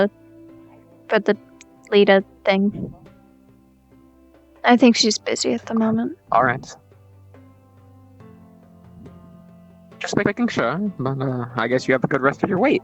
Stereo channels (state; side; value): identical; both; correlation 1.00